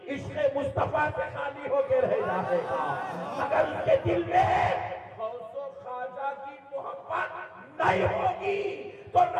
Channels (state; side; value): identical; both; correlation 1.00